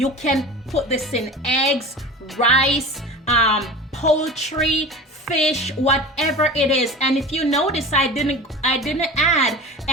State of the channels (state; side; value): normal; both; correlation 0.34